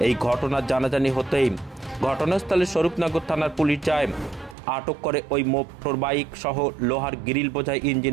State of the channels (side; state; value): left; drops out; at 4.5 s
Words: এই ঘটনার জানাজানি হতেই ঘটনাস্থলে স্বরূপনগর থানার পুলিশ যায়, আটক করে ওই মোটর বাইক সহ লোহার গ্রিল বোঝাই